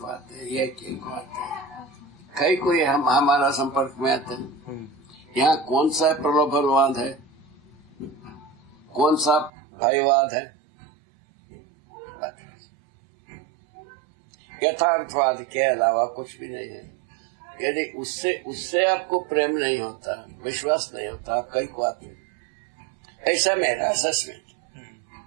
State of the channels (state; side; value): drops out; left; at 9.5 s